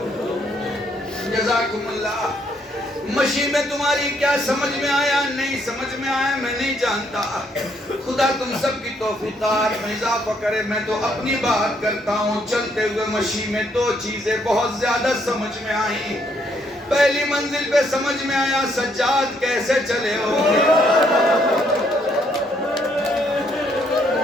جزاکم اللہ۔ مشی میں تمہاری کیا سمجھ میں آیا نہیں سمجھ میں آیا میں نہیں جانتا، خدا تم سب کی توفیقات میں اضافہ کرے۔ میں تو اپنی بات کرتا ہوں، چلتے ہوئے مشی میں 2 چیزیں بہت زیادہ سمجھ میں آئیں۔ پہلی منزل پہ سمجھ میں آیا سجاد کیسے چلے ہو،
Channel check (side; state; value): both; normal; correlation 0.71